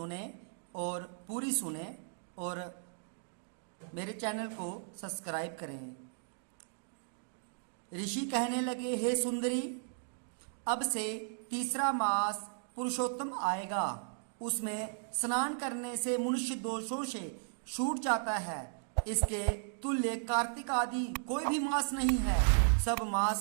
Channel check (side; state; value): left; silent; digital silence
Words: और पूरी सुने और मेरे चैनल को सब्सक्राइब करें। ऋषि कहने लगे, हे सुंदरी, अब से तीसरा मास पुरुषोत्तम आएगा। उसमें स्नान करने से मनुष्य दोषों से छूट जाता है। इसके तुल्य कार्तिक आदि कोई भी मास नहीं है। सब